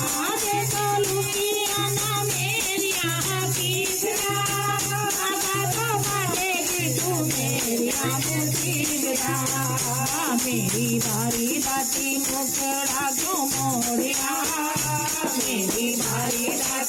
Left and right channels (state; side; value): identical; both; correlation 1.00